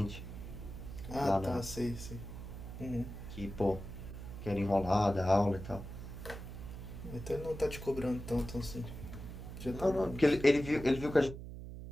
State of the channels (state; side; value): noise; right; hum, 10 dB below the sound